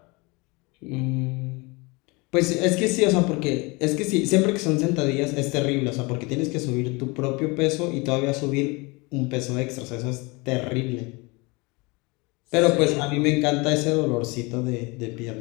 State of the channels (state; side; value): quieter; right; 26.5 dB